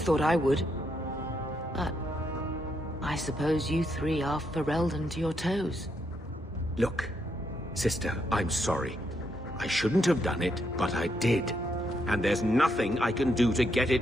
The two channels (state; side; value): normal; both; correlation 0.78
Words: thought I would. But... I suppose you three are Ferelden to your toes. Look, sister, I'm sorry. I shouldn't have done it, but I did. And there's nothing I can do to get